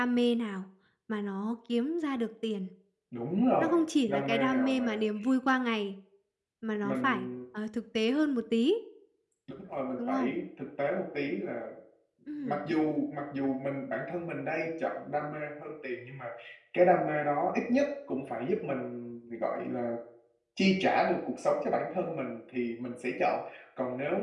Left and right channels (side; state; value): both; identical; correlation 1.00